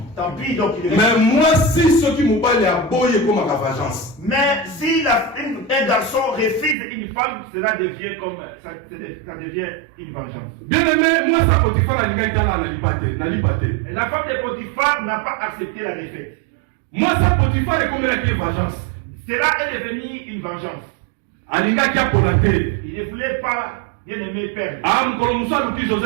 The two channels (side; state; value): left; drops out; at 6.8 s